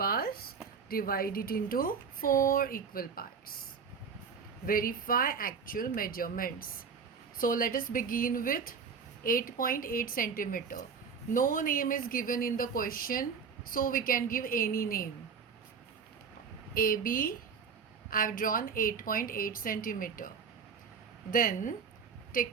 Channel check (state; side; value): quieter; left; 6.0 dB